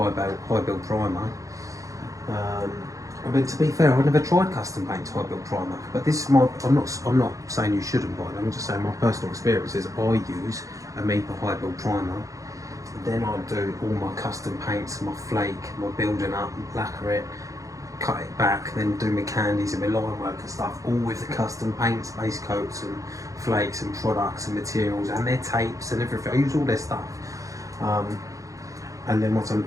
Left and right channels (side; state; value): left; late; 0.16 ms